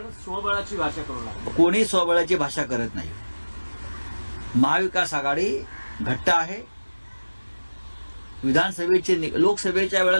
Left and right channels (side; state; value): both; inverted; correlation -1.00